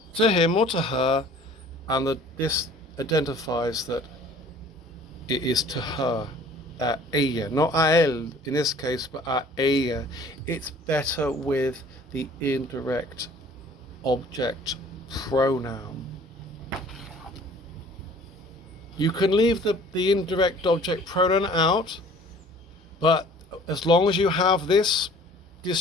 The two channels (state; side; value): normal; both; correlation 0.51